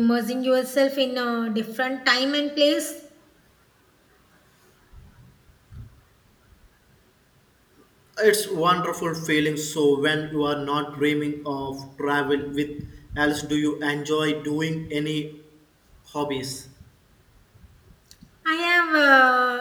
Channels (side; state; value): both; identical; correlation 1.00